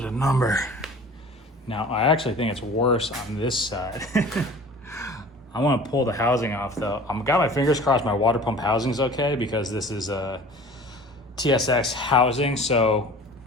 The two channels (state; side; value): normal; both; correlation 0.43